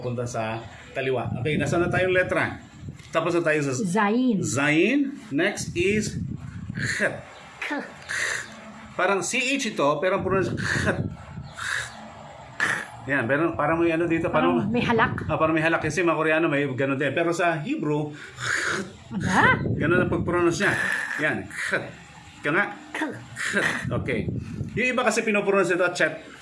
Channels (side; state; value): both; identical; correlation 1.00